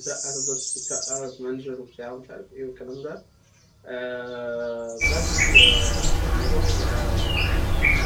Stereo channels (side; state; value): both; identical; correlation 1.00